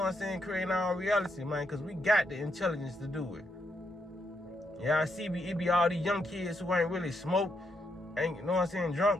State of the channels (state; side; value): normal; both; correlation 0.78